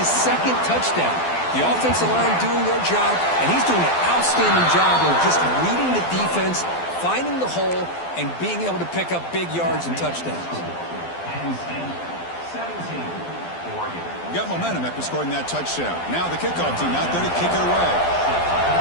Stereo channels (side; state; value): right; late; 12 ms